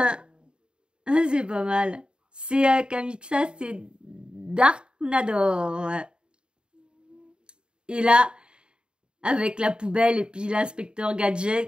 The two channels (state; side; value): late; left; 0.051 ms